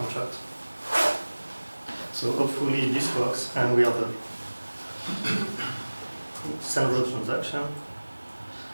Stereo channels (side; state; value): both; inverted; correlation -1.00